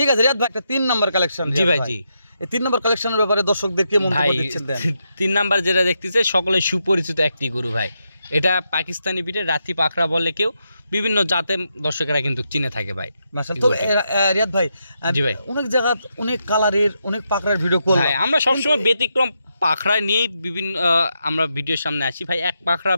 আছে রিয়াদ ভাই, একটা 3 নম্বর কালেকশন। জি ভাই, জি। এই 3 নম্বর কালেকশনের ব্যাপারে দর্শকদেরকে মন্তব্য ভাই দিচ্ছেন দেন। 3 নাম্বার যেটা দেখতেছে সকলে সুপরিচিত একটি গরু ভাই। এটা পাকিস্তানি বিটের রাতি পাখরা বলে কেউ, বিভিন্ন জাতে দর্শকেরা কিন্তু চিনে থাকে ভাই। মাশাআল্লাহ। তো রিয়াদ ভাই জি ভাই। অনেক জায়গা অনেক কালারের অনেক পাকড়ার ভিডিও করলাম ভাই আমরা সবসময় ব্যতিক্রম পাখরা নিয়েই বিভিন্ন আমরা ভিডিওর সামনে আসি ভাই। এক পাখরা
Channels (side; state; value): both; inverted; correlation -0.83